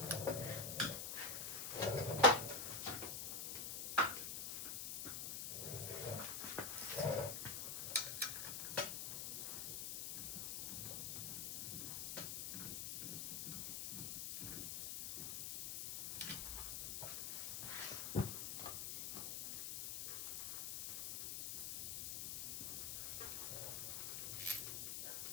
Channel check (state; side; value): noise; left; hiss, 2 dB below the sound